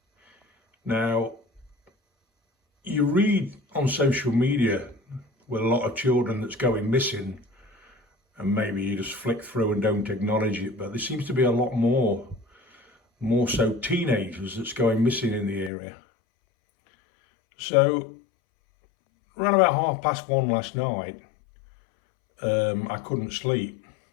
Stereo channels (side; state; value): right; drops out; at 15.7 s